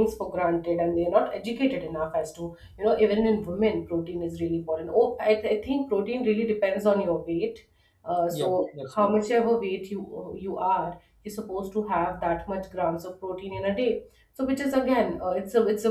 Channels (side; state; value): both; identical; correlation 1.00